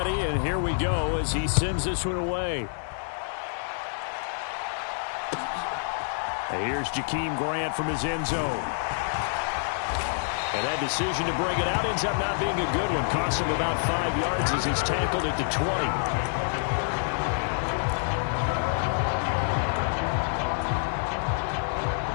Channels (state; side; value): silent; right; digital silence